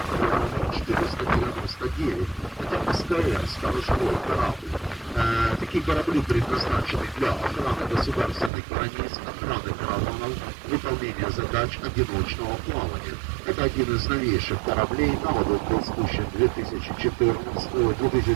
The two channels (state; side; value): drops out; left; at 8.5 s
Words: номер 499. Это СКР, сторожевой корабль. Такие корабли предназначены для охраны государственных границ, охраны караванов, выполнения задач одиночного плавания. Это один из новейших кораблей. На воду был спущен в